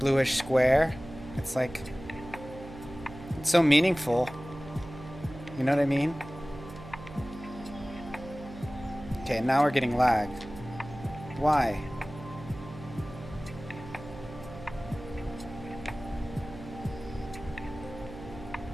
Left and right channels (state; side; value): noise; right; hum, 14 dB below the sound